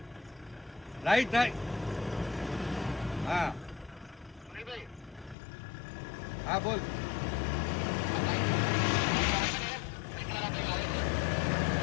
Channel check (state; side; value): drops out; right; at 5.4 s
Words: राइट हाँ हाँ बोल